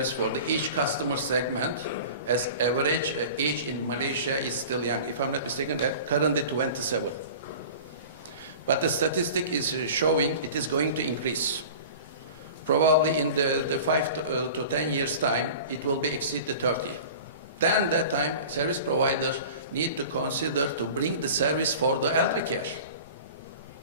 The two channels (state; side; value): inverted; both; correlation -0.39